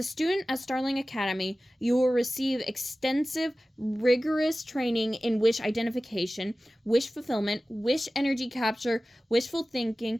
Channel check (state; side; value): normal; both; correlation 0.96